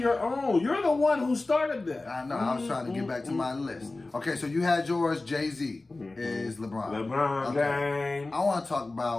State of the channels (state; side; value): quieter; right; 3.2 dB